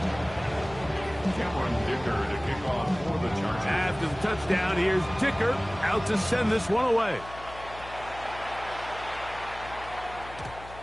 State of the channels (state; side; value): noise; left; hum, 16 dB below the sound